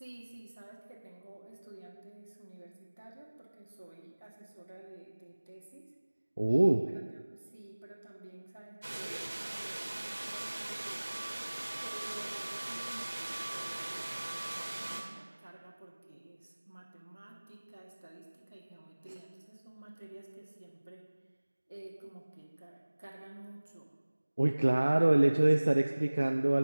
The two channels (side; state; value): both; inverted; correlation -1.00